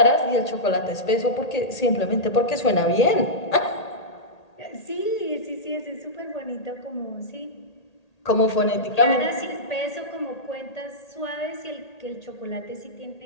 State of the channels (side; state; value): right; late; 1.8 ms